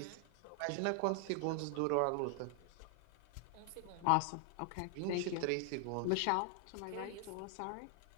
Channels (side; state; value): both; different; correlation 0.00